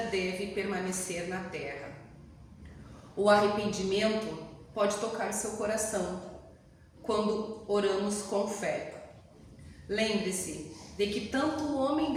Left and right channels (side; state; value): both; identical; correlation 1.00